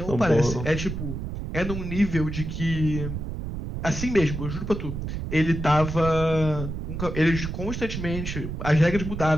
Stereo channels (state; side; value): noise; right; rumble, 5 dB below the sound